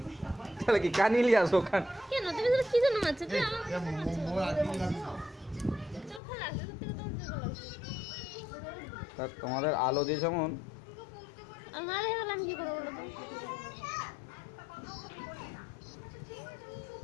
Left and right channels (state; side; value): drops out; right; at 6.2 s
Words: তাহলে কি কানিলি আসো কান কেন তুমি তো কি জন্য মারছো কি আমার মোর আগে লাগি চোখে লাগছে সত্যি কথা চোখে লাগছে তা তোমাদের আলো দিয়ে যেমন আর মারে গেলে আমি কি করবো বলো তো